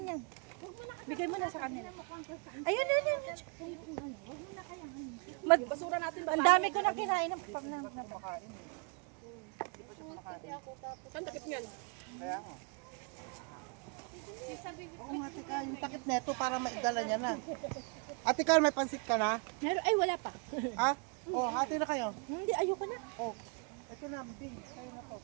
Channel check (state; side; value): quieter; left; 33.4 dB